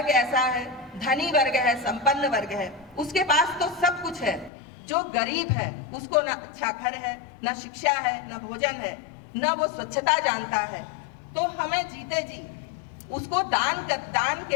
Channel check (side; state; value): right; drops out; at 4.5 s